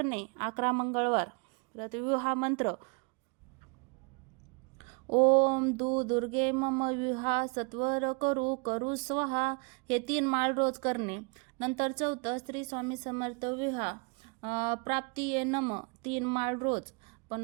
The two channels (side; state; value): left; quieter; 33.3 dB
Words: 11 मंगळवार. परत विवाह मंत्र ओम दुर्गे मम विवाह सत्वर करू करू स्वाहा, हे 3 माळ रोज करणे. नंतर चौथं श्री स्वामी समर्थ विवाह प्राप्ती ये नम 3 माळ रोज.